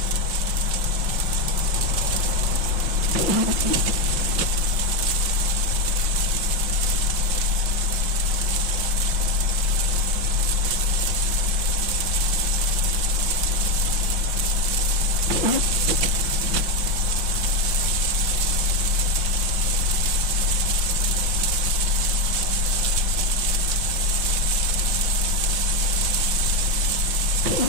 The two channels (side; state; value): left; late; 5.6 ms